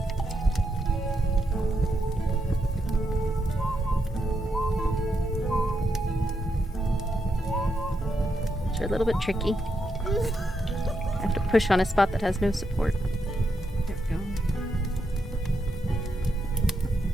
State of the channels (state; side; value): normal; both; correlation 0.82